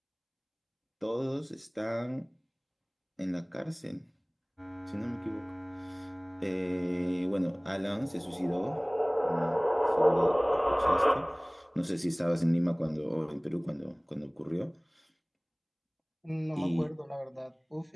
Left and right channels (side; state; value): both; identical; correlation 1.00